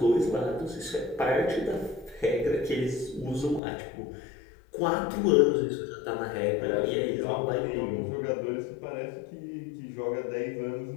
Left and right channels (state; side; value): drops out; right; at 3.6 s